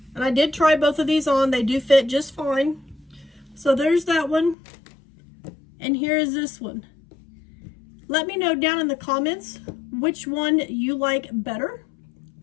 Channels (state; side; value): drops out; right; at 4.5 s